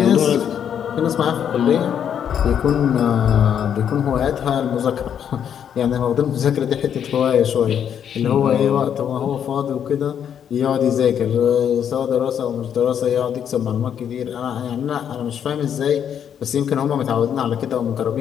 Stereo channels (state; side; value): quieter; right; 8.7 dB